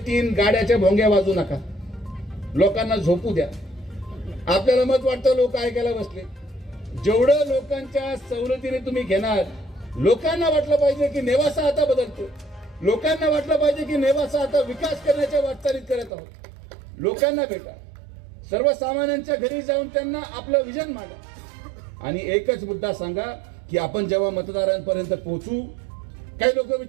3 गाड्याच्या भोंग्या वाजू नका. लोकांना झोपू द्या. आपल्याला मत वाटतं लोक ऐकायला बसले. जेवढं लोकांच्या सवलतीने तुम्ही घेणार, लोकांना वाटलं पाहिजे की नेवासा आता बदलतो. लोकांना वाटलं पाहिजे की नेवासा आता विकास करण्याच्या वाटचालीत करत आहोत. लोकांना भेटा, सर्वसामान्यांच्या घरी जाऊन त्यांना आपलं विजन मांडा आणि एकच मुद्दा सांगा की आपण जेव्हा मतदारांपर्यंत पोहोचू, काही लोक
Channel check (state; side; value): drops out; left; at 16.1 s